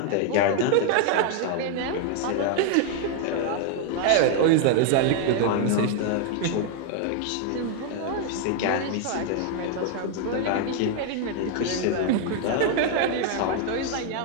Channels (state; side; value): different; both; correlation 0.00